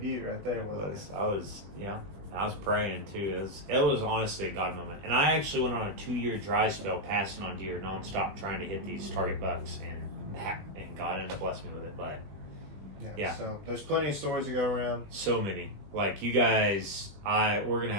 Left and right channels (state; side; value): late; left; 20 ms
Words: right there with us. I was praying too. It was honestly a God moment. And I actually went on a 2-year dry spell passing on deer nonstop trying to hit these target bucks, and God ended up blessing me with it. But yeah. So there's plenty of stories to go around. So many. Like you guys, we're gonna